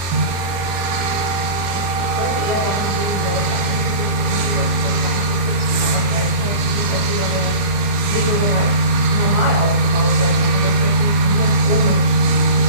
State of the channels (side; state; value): left; late; 22 ms